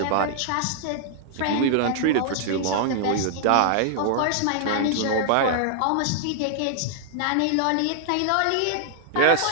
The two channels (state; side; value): different; both; correlation -0.01